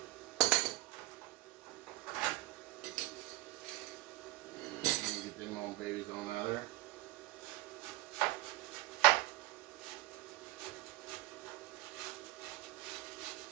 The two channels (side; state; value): left; quieter; 18.7 dB